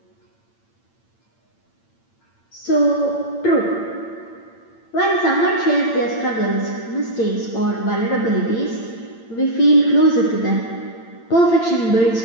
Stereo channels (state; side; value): late; right; 8.8 ms